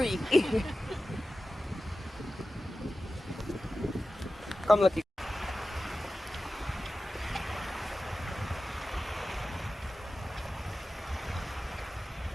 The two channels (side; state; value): both; normal; correlation 0.94